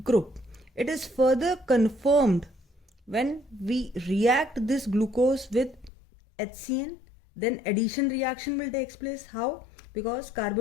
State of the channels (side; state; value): right; drops out; at 5.9 s